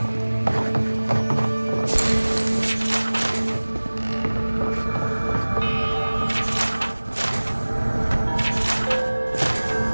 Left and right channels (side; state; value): both; inverted; correlation -1.00